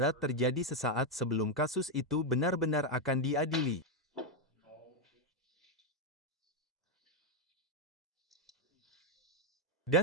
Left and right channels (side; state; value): both; normal; correlation 0.03